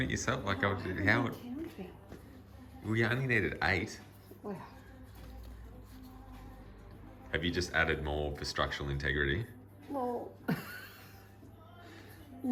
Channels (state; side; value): identical; both; correlation 1.00